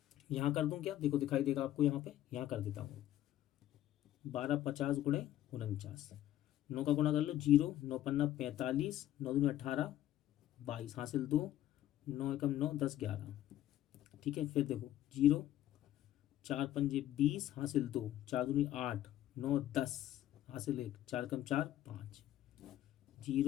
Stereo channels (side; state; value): right; quieter; 12.9 dB